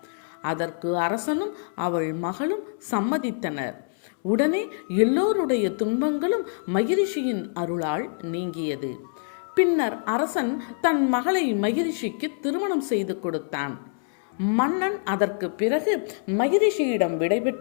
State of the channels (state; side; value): silent; right; 61 dB below the other